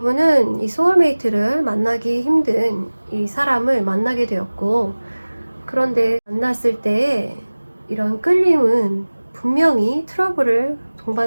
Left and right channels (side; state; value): both; inverted; correlation -1.00